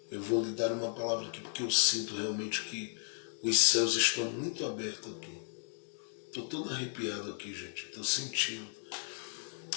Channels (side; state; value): right; silent; 54 dB below the other